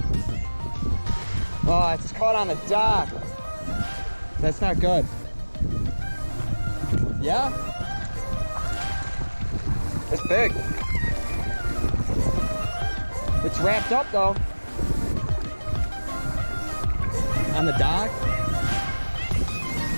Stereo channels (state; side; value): inverted; both; correlation -1.00